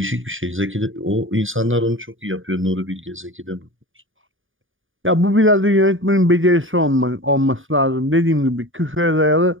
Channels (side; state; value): left; late; 0.58 ms